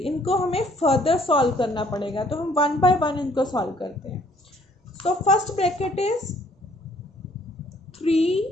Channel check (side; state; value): both; normal; correlation 0.62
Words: हमें फर्दर सॉल्व करना पड़ेगा. तो हम 1 बाय 1 इनको सॉल्व करते हैं. So first bracket is